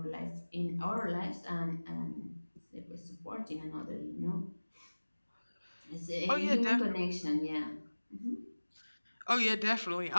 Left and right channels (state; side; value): inverted; both; correlation -1.00